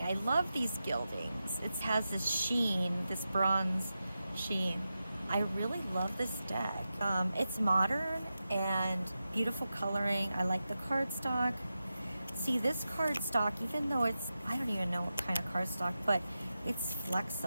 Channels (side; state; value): both; inverted; correlation -0.91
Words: I love these gildings. It has this sheen, this bronze sheen. I really love this deck. It's modern and beautiful coloring. I like the cardstock. See, this cardstock, even though it's, I don't even know what kind of cardstock, but it's